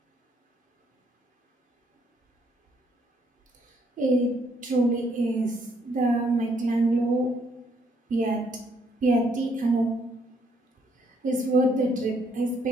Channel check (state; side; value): normal; both; correlation 0.70